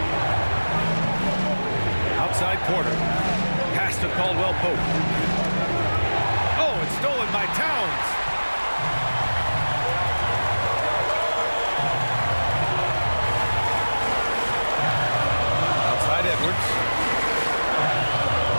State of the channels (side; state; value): both; inverted; correlation -1.00